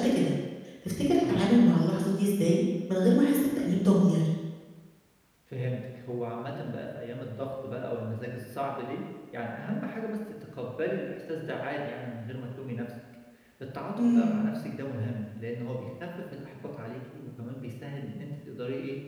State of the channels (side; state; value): both; identical; correlation 1.00